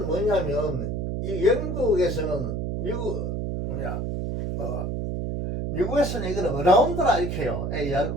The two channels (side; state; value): right; noise; hum, 2 dB below the sound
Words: 뭐냐면 이 영국에서는 미국에서는 이거는 around라 이렇게 해요.